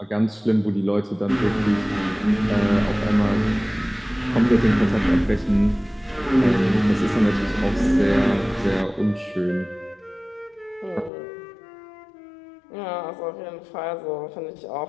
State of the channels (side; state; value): right; drops out; at 11.1 s